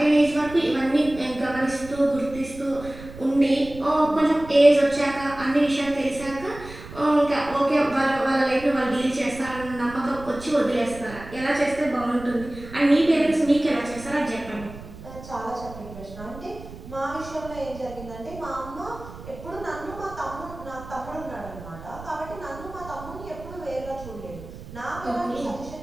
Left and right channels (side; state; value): right; noise; rumble, 15 dB below the sound